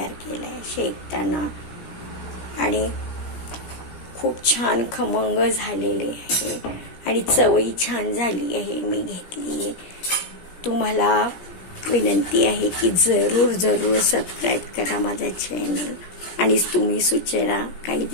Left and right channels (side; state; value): right; late; 17 ms